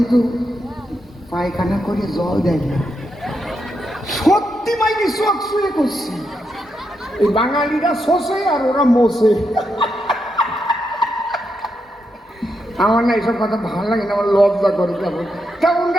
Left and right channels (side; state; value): both; normal; correlation 0.83